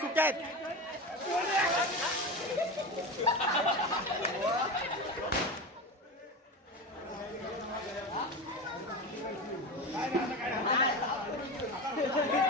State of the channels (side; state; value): both; normal; correlation 0.24